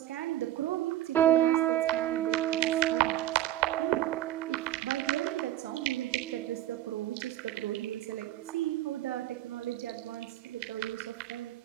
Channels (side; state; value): left; quieter; 13.3 dB